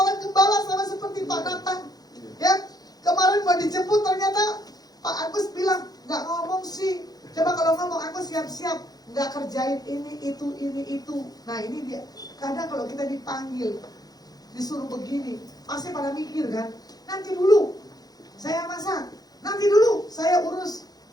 gembala, sama seperti Pak Nathan, ya. Kemarin mau dijemput ternyata Pak Agus bilang nggak ngomong sih. Coba kalau ngomong aku siap-siap, nggak kerjain ini itu. Nah ini dia. Kadang kalau kita dipanggil, disuruh begini, pasti pada mikir kan, nanti dulu saya masak, nanti dulu saya urus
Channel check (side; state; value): right; late; 0.19 ms